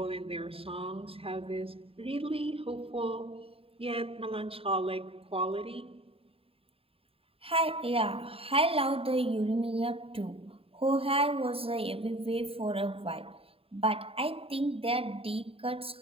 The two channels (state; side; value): late; left; 0.27 ms